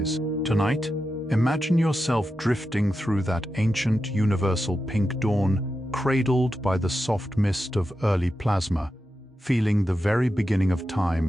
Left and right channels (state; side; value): normal; both; correlation 0.89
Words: Tonight, imagine yourself drifting through that ancient universal pink dawn, cradled by the soft mist of early plasma, feeling the very beginning of time